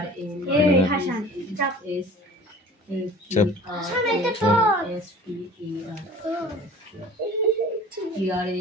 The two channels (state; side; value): normal; both; correlation 0.45